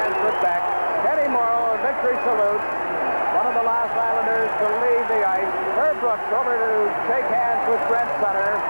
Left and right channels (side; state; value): both; inverted; correlation -1.00